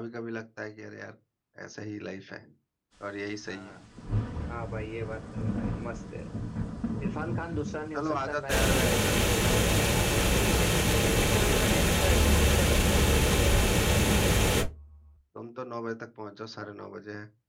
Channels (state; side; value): identical; both; correlation 1.00